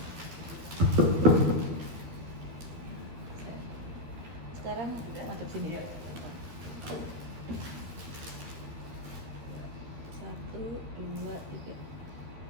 Sekarang masuk sini. 1, 2, 3.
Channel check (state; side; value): late; left; 12 ms